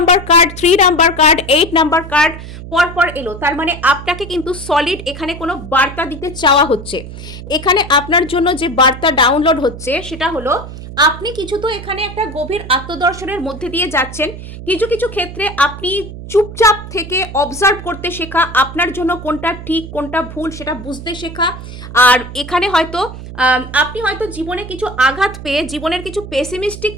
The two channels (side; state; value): right; noise; hum, 12 dB below the sound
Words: card, 3 number card, 8 number card পরপর এলো। তার মানে আপনাকে কিন্তু সলিড এখানে কোনো বার্তা দিতে চাওয়া হচ্ছে। এখানে আপনার জন্য যে বার্তা ডাউনলোড হচ্ছে সেটা হলো আপনি কিছু তো এখানে একটা গভীর আত্মদর্শনের মধ্যে দিয়ে যাচ্ছেন, কিছু কিছু ক্ষেত্রে আপনি চুপচাপ থেকে অবজার্ভ করতে শেখা, আপনার জন্য কোনটা ঠিক কোনটা ভুল সেটা বুঝতে শেখা। আর এখানে হয়তো আপনি হয়তো জীবনে কিছু আঘাত পেয়ে জীবনের কিছু পেসিমিস্টিক